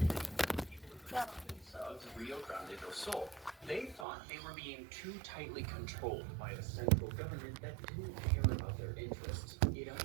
Of Rio Grande do Sul. They thought they were being too tightly controlled by a central government that didn't care about their interests. It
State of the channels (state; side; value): drops out; left; at 4.0 s